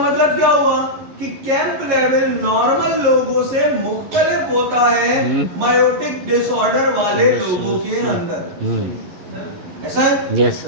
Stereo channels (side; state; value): left; late; 11 ms